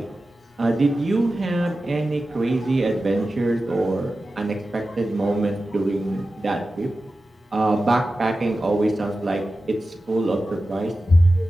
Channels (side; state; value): both; normal; correlation 0.94